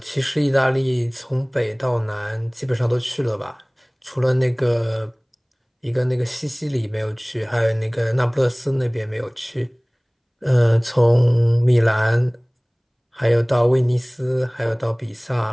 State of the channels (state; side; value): identical; both; correlation 1.00